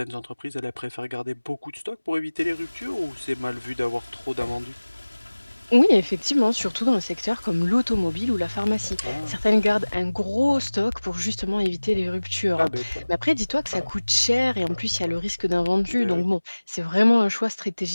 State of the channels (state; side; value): inverted; both; correlation -1.00